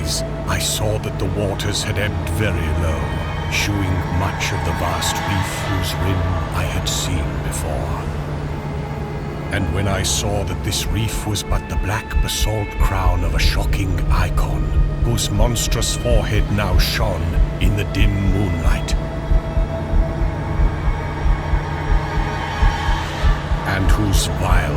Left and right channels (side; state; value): both; identical; correlation 1.00